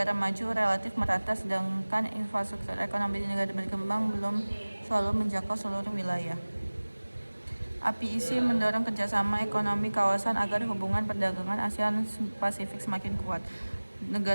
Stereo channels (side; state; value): both; inverted; correlation -1.00